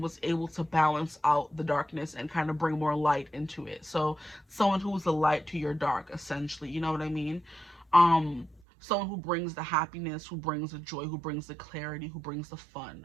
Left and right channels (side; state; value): left; drops out; at 8.6 s